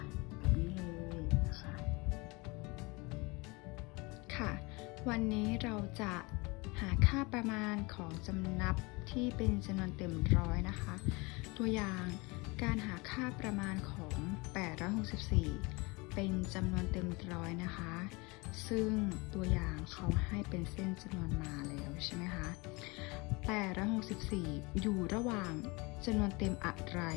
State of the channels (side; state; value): right; quieter; 26.2 dB